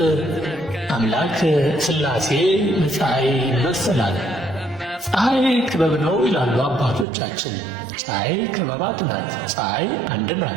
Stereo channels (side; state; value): left; drops out; at 7.1 s